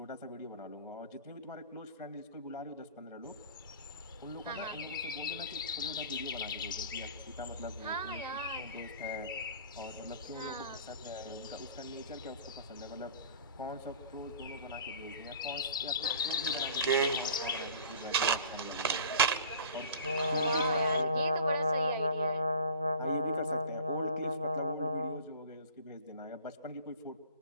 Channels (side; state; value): both; inverted; correlation -0.43